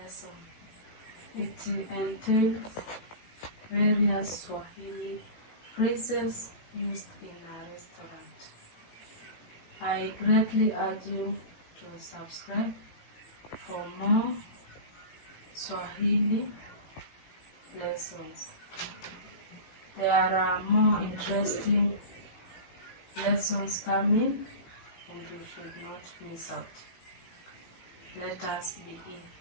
It entails various Swahili phrases used in a restaurant. I greatly urge you to subscribe for more Swahili lessons. There are more interesting lessons coming and you should not miss out. Let us begin.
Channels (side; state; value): right; late; 17 ms